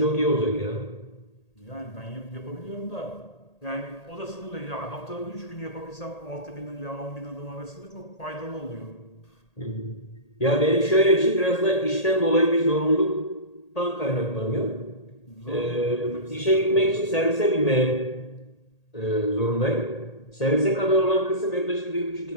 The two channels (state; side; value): late; right; 1.8 ms